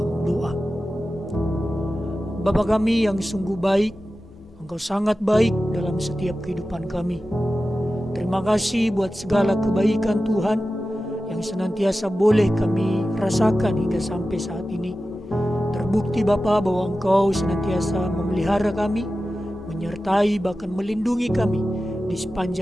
doa. Bapa kami yang sungguh baik, Engkau sangat baik dalam setiap kehidupan kami. Terima kasih buat segala kebaikan Tuhan yang senantiasa boleh kami rasakan hingga sampai saat ini. Terbukti Bapa bahwa Engkau senantiasa memelihara kami, menyertai bahkan melindungi kami di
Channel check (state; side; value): normal; both; correlation 0.94